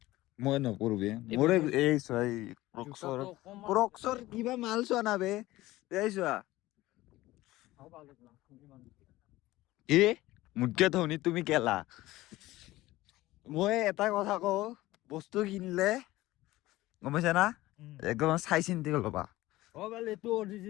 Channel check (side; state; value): right; quieter; 17.5 dB